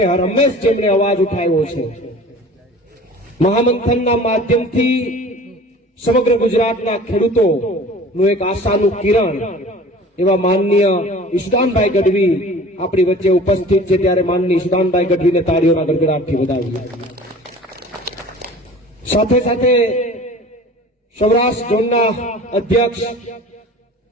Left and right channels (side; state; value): both; normal; correlation 0.43